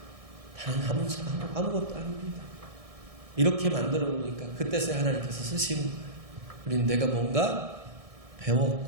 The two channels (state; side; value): late; left; 1.6 ms